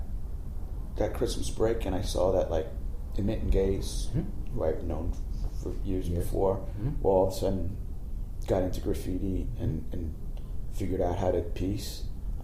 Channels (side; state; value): both; identical; correlation 1.00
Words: Christmas break, and I saw that like Emit and Gaze, who I've known for years before, well, all of a sudden got into graffiti and figured out how to piece.